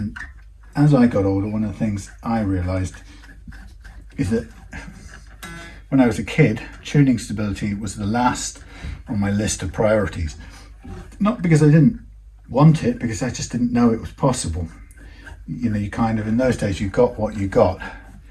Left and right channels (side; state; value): both; identical; correlation 1.00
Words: as I got older, one of the things I realized is that when I was a kid, tuning stability was the last on my list of priorities. Not because I didn't want it, because I just didn't know it was possible. You know, you kind of, in those days, you got what you got.